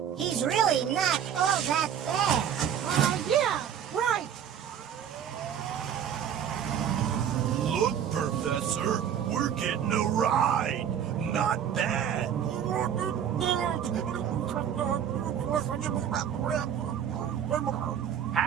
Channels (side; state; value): left; quieter; 9.0 dB